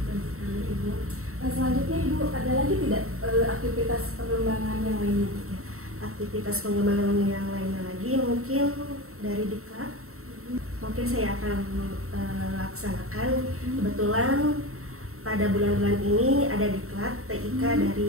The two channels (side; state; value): left; late; 0.63 ms